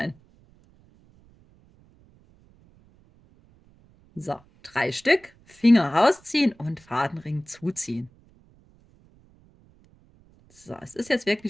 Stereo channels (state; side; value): noise; right; rumble, 29 dB below the sound